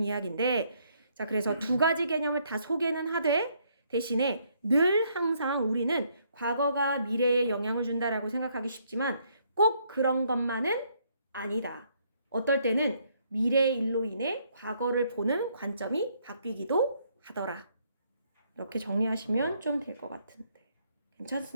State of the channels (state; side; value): inverted; both; correlation -0.70